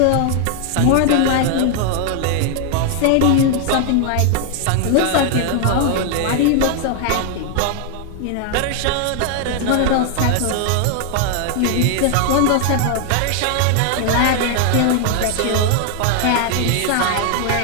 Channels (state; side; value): different; both; correlation 0.00